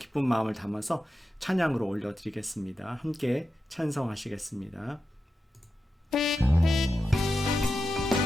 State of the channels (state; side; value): normal; both; correlation 0.90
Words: 마음을 담아서 찬양으로 올려드리겠습니다. 함께 찬송하시겠습니다.